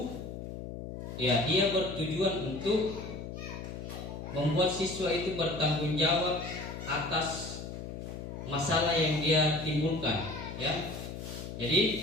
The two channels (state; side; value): noise; left; hum, 8 dB below the sound